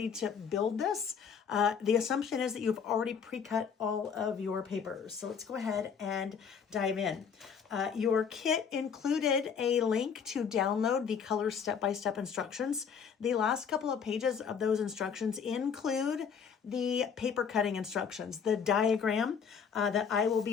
to build this, the assumption is that you've already pre-cut all of your papers. So let's go ahead and dive in. Your kit included a link to download the color step-by-step instructions. The last couple of pages of those instructions include the paper cutting instructions, the diagram that I will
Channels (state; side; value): quieter; right; 6.8 dB